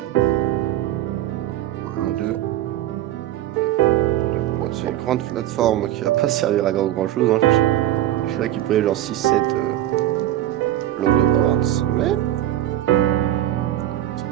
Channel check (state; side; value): quieter; left; 13.3 dB